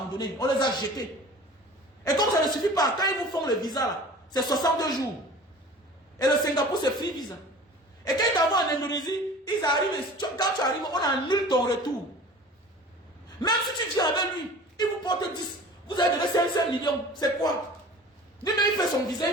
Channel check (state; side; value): normal; both; correlation 0.42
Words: on les a jetés. Et comme ça ne suffit pas, quand ils vous font le visa là, c'est 62 jours. Et le Singapour, c'est free visa. Et quand ils t'envoient en Indonésie, ils arrivent, quand tu arrives, on annule ton retour. Même si tu viens avec lui, il vous porte 10. Vous avez donné 500 millions. C'est quoi? Lui-même, il fait son visa,